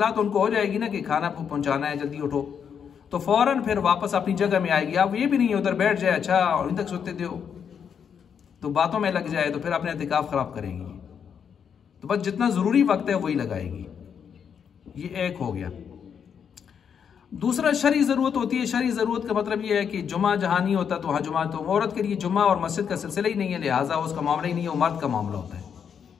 तो उनको हो जाएगी ना कि खाना पहुँचाना है, जल्दी उठो, तो फ़ौरन फिर वापस अपनी जगह में आएगी। आप ये भी नहीं उधर बैठ जाए, अच्छा और इन तक सोते दो, तो बातों में लग जाए, तो फिर अपने एतिकाफ़ ख़राब करेगी। तो बस जितना ज़रूरी वक्त है वही लगाएगी। ये एक हो गया। दूसरा शरई ज़रूरत होती है। शरई ज़रूरत का मतलब ये है कि जुमा जहाँ नहीं होता तो वहाँ जुमा, तो औरत के लिए जुमा और मस्जिद का सिलसिला ही नहीं है, लिहाजा उसका मामला ही नहीं है, वो मर्द का मामला होता है।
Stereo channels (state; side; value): quieter; right; 7.5 dB